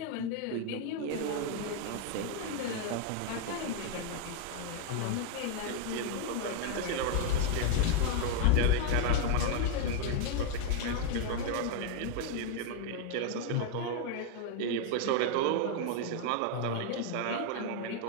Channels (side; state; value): both; different; correlation 0.00